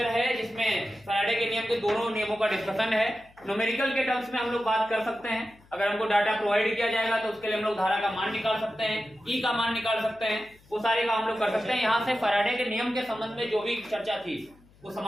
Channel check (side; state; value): left; noise; hum, 28 dB below the sound